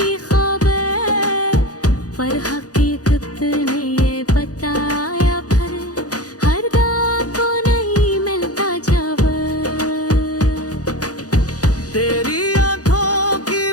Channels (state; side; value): late; right; 0.67 ms